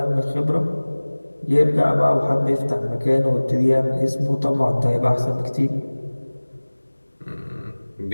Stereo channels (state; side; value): inverted; both; correlation -1.00